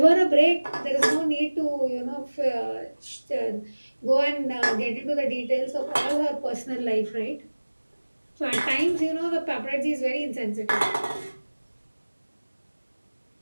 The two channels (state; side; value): inverted; both; correlation -1.00